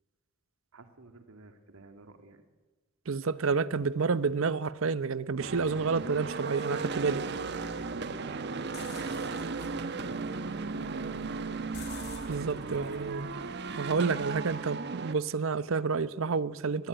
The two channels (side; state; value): left; quieter; 4.2 dB